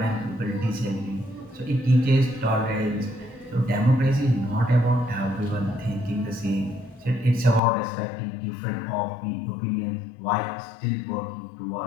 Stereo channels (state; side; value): drops out; right; at 7.6 s